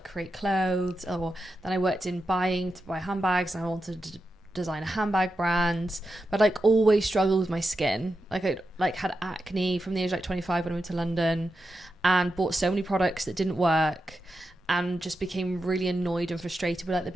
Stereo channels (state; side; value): normal; both; correlation 0.89